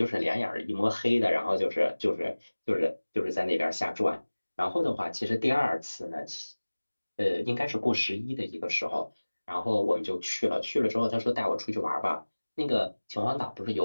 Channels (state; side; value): inverted; both; correlation -1.00